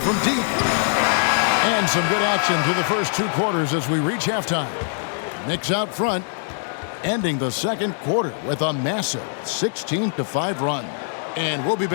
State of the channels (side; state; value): right; silent; digital silence